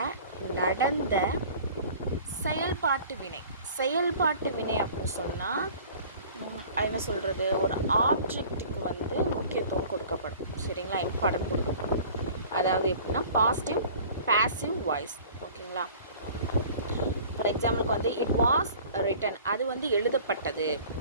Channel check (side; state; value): both; inverted; correlation -0.46